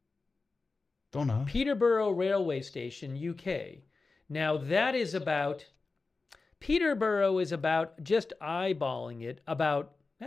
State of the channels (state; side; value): quieter; right; 3.9 dB